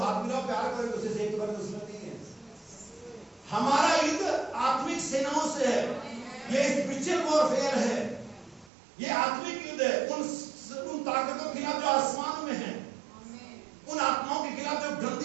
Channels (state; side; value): drops out; left; at 8.7 s